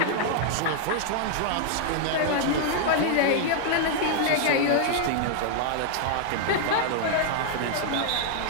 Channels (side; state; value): both; different; correlation 0.00